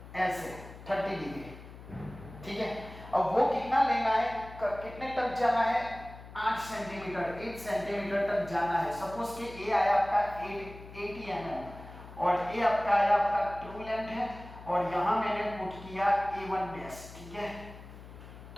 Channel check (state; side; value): noise; left; hum, 16 dB below the sound